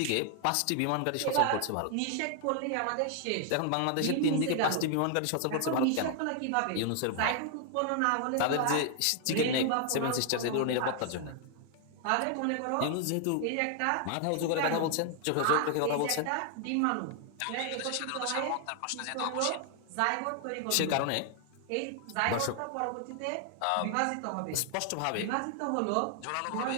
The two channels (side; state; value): both; different; correlation 0.00